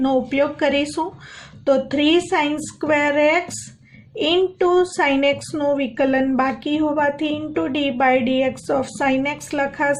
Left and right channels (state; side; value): identical; both; correlation 1.00